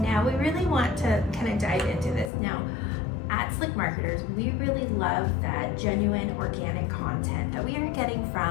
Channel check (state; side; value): drops out; right; at 2.3 s